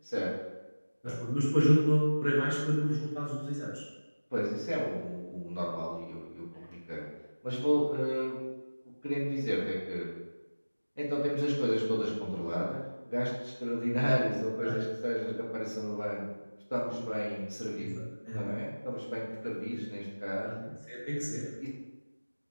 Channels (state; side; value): inverted; both; correlation -1.00